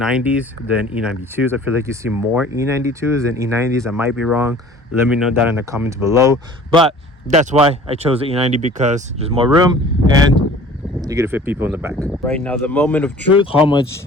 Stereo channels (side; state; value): both; normal; correlation 0.47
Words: than E92s. I feel like you see more E92s than E90s. I might be wrong. Let me know that in the comments below. But that's why I chose the E90, because there's more room and you get to fit people in the back. Right now, the moment of truth, how much